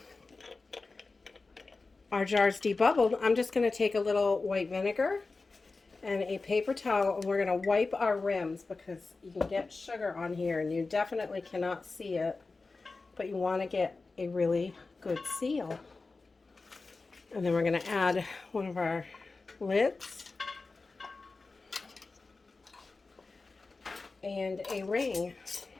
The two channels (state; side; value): quieter; right; 3.8 dB